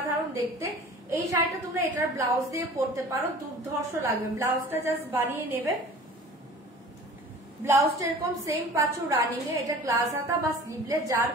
দেখতে। এই শাড়িটা তোমরা এটার ব্লাউজ দিয়ে পরতে পারো, দুর্ধর্ষ লাগবে। ব্লাউজটা জাস্ট বানিয়ে নেবে, ব্লাউজটা এরকম সেম পাচ্ছ রানিং এ। এটা গ্লাস হাতা বা স্লিভলেস, যার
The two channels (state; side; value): normal; both; correlation 0.43